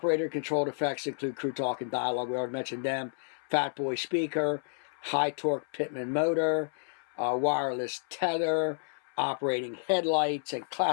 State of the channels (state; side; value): silent; right; 57 dB below the other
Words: effects include crew talk and dialogue. We already mentioned them. Fat Boy speaker, high-torque Pitman motor, wireless tether, operating headlights and